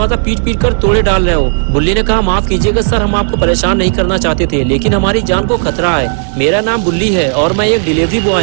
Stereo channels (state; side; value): silent; left; digital silence